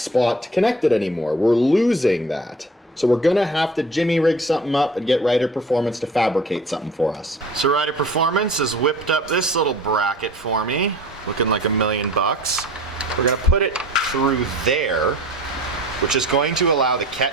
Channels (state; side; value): normal; both; correlation 0.44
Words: to connect it anymore. We're losing that. So we're gonna have to jimmy rig something up and get Ryder Performance to fabricate something for us. So Ryder Performance has whipped up this little bracket for me, looking like $1,000,000. We're gonna put it through there, which is going to allow the